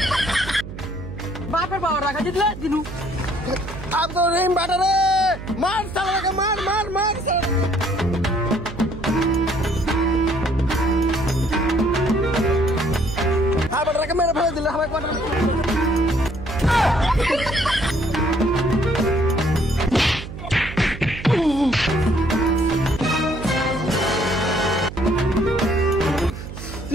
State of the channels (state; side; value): noise; right; hum, 11 dB below the sound